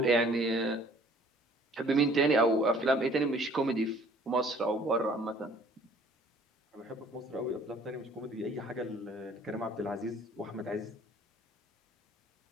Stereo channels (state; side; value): normal; both; correlation 0.55